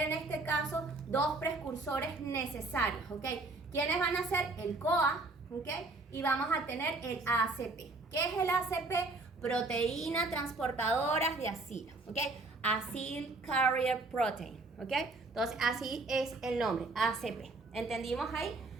este caso dos precursores necesarios, ¿ok? ¿Quiénes van a ser? El CoA, ¿ok? Y vamos a tener el ACP. ¿Qué es el ACP? Proteína transportadoras de acilo, ¿ok? Acyl Carrier Protein, ¿ok? Entonces, así es el nombre, ACP. ¿Entendimos ahí?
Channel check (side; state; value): left; quieter; 3.2 dB